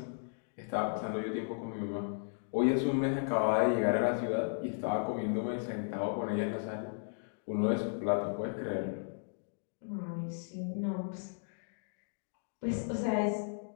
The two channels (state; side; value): silent; right; digital silence